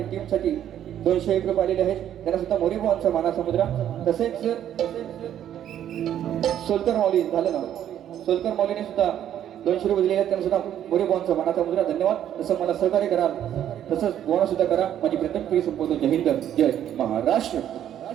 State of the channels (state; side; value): quieter; left; 10.6 dB